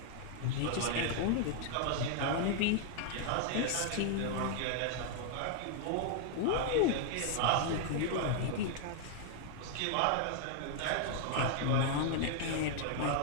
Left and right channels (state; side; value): different; both; correlation 0.00